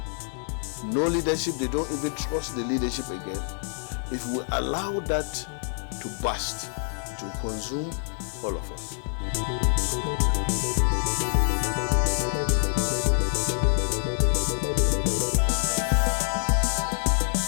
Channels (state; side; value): silent; right; 61 dB below the other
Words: No leadership, they don't even trust the leadership again. If we allow that to burst, it will consume all of us.